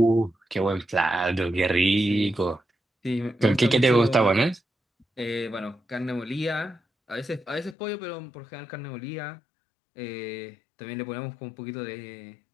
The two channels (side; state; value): right; drops out; at 7.8 s